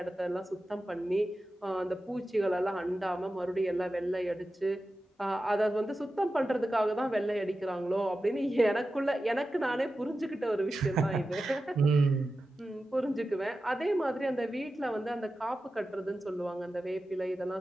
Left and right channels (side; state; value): both; normal; correlation 0.93